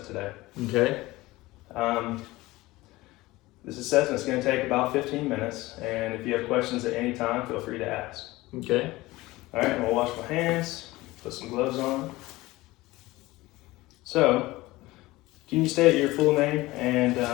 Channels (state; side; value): quieter; right; 19.4 dB